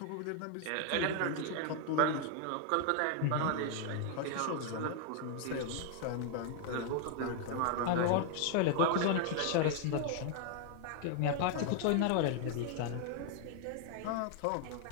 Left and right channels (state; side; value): different; both; correlation 0.00